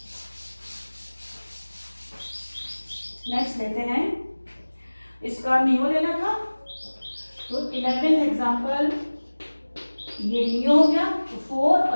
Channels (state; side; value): inverted; both; correlation -1.00